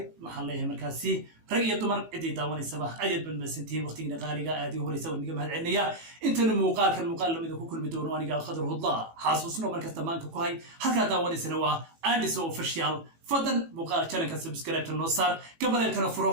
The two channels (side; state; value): left; late; 18 ms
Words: محل ليه مركزي رجع دمر عدي داون الصباح أجد بالمسنتين وقت نقالي هذه هو يسوي نجمة هالعنية أنت المقال كان مقال لما إذا كل بدون وأنا قال خضره الله حاسوسنا مركز تمان كوهاي هكذا داون سنوا عندي سو فشيال فضل مقال كان كسبسكرايب النصار قبل